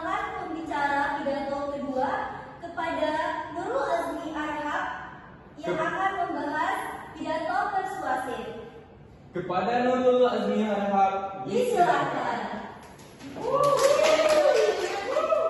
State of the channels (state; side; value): identical; both; correlation 1.00